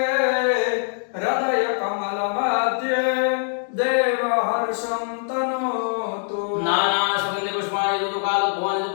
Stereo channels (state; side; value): silent; right; digital silence